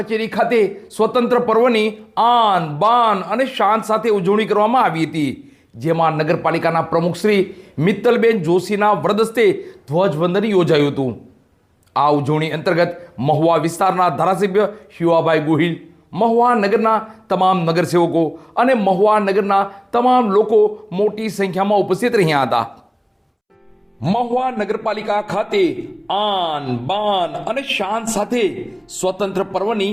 ખાતે સ્વતંત્ર પર્વની આન બાન અને શાન સાથે ઉજવણી કરવામાં આવી હતી, જેમાં નગરપાલિકાના પ્રમુખ શ્રી મિત્તલબેન જોશીના વરદસ્તે ધ્વજવંદન યોજાયું હતું। આ ઉજવણી અંતર્ગત મહુવા વિસ્તારના ધારાસભ્ય શિવાભાઈ ગોહિલ, મહુવા નગરના તમામ નગરસેવકો અને મહુવા નગરના તમામ લોકો મોટી સંખ્યામાં ઉપસ્થિત રહ્યા હતા। મહુવા નગરપાલિકા ખાતે આન બાન અને શાન સાથે સ્વતંત્ર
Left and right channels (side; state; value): both; identical; correlation 1.00